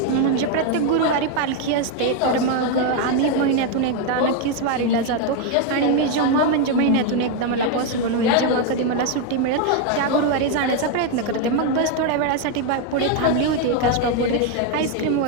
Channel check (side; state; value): both; different; correlation 0.01